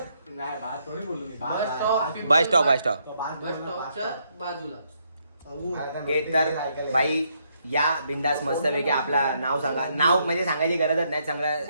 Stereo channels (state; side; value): inverted; both; correlation -0.75